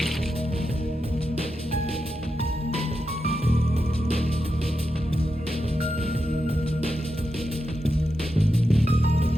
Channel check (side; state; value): both; normal; correlation 0.88